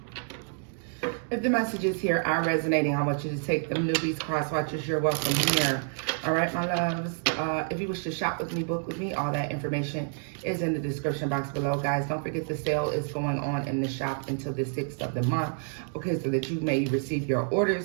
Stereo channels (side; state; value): left; silent; 58 dB below the other